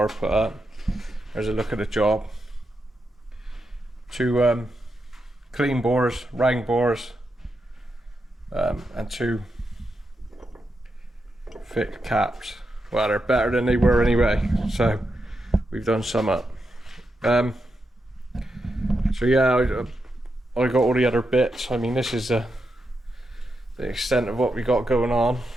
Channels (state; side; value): normal; both; correlation 0.86